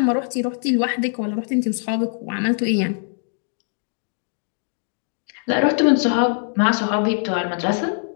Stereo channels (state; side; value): silent; right; 61 dB below the other